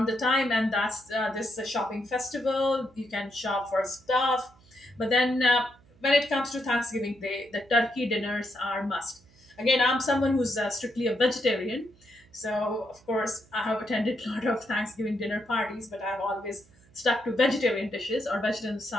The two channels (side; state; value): right; noise; hum, 29 dB below the sound